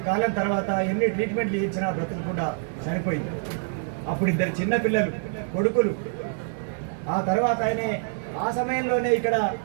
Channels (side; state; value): left; silent; digital silence